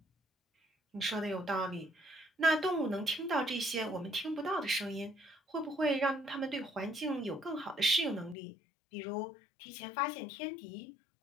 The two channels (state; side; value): drops out; right; at 8.3 s